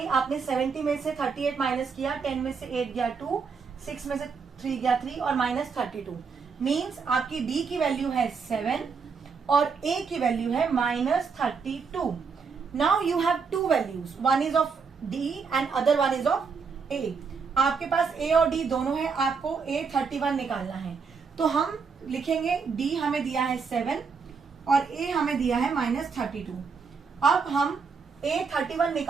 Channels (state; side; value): quieter; left; 5.4 dB